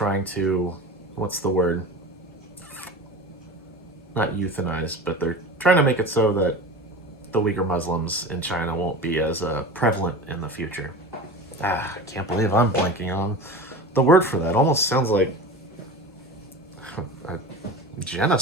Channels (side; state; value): both; normal; correlation 0.32